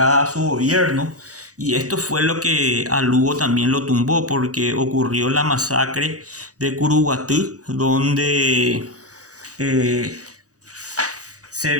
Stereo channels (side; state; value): left; late; 0.67 ms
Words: a su gobierno, y esto fue lo que a Lugo también lo tumbó, porque ocurrió la masacre de Curuguatú, donde